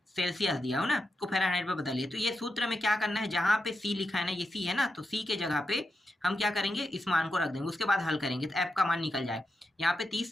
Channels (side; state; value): both; normal; correlation 0.88